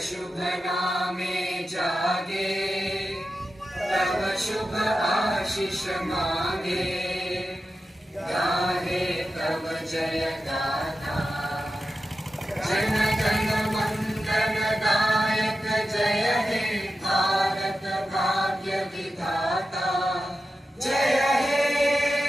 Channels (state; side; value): normal; both; correlation 0.91